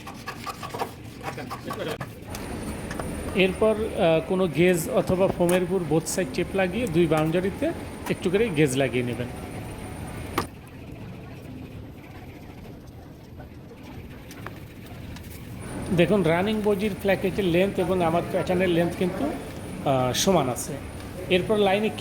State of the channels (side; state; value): both; identical; correlation 1.00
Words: এরপর কোনো গেজ অথবা ফোমের উপর বোথ সাইড টেপ লাগিয়ে দুই বাউন্ডারিতে একটু করে গেজ লাগিয়ে নেবেন। দেখুন রানিং বডির প্ল্যাকেটের লেন্থ এবং আমার প্যাটার্নের লেন্থ কিন্তু সমান আছে। এরপর লাইনে